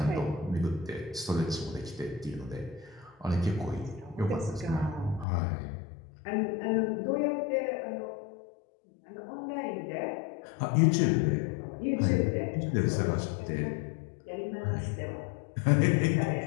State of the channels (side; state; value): right; drops out; at 5.2 s